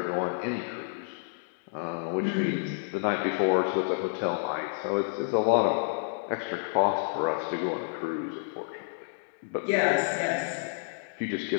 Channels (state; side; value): silent; right; digital silence